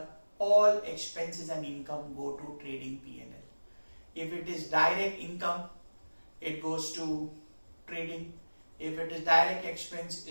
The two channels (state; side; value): inverted; both; correlation -1.00